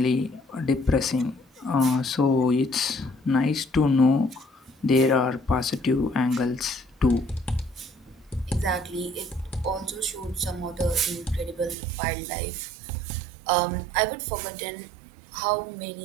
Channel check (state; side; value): drops out; left; at 11.8 s